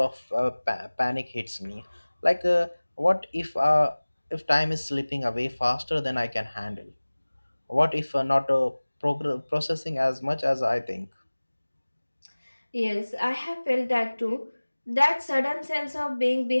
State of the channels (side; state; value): both; inverted; correlation -1.00